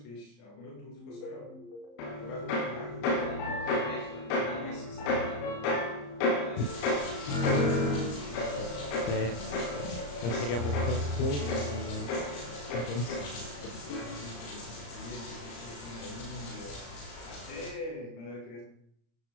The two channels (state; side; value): late; right; 34 ms